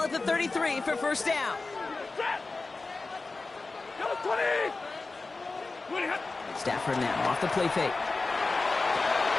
at the 33 for first down. Stafford now off the play fake.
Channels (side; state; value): right; quieter; 3.7 dB